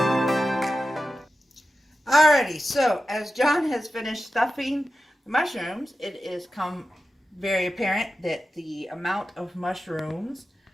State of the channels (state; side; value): normal; both; correlation 0.92